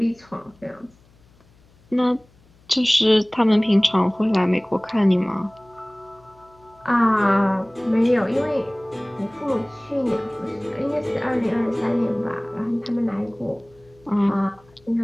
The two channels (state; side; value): noise; left; hum, 30 dB below the sound